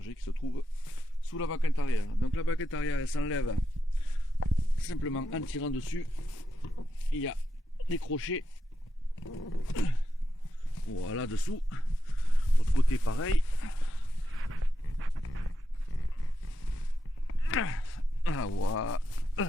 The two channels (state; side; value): normal; both; correlation 0.86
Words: qui se trouve sous la baquette arrière. Donc la baquette arrière elle s'enlève simplement en tirant dessus. Il y a des crochets, voilà dessous. L'autre côté pareil. Ah, voilà.